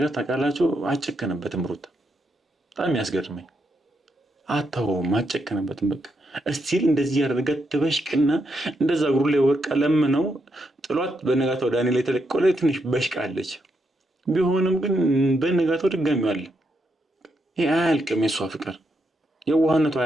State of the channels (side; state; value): both; normal; correlation 0.80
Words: ታውቃላችሁ፣ አጨከነበትም ሩታ በጣም ያስገርመኝ። አታውም አጨከነበትም። በቃ እስቲል እንደዚህ ያደረጋት ትበሽቅና እንደዛ እግሩ ላይ ወርቃ ለምነው ጥሏት በነጋታው ዳንኤል ላይ ተለቀቀ። ትንሽ በሽቃለች። ቢሆንም ግን በነጋታው ድጋሚው አለ። ይሄ አያልቅም። የሷ ፍቅር የዋህነቱ